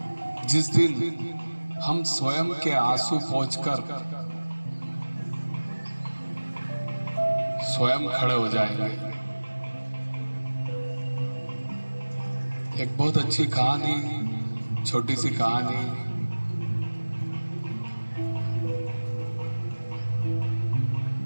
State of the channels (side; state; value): both; inverted; correlation -1.00